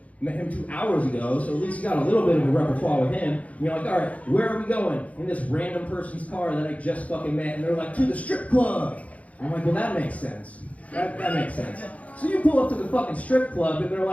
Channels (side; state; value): right; late; 0.067 ms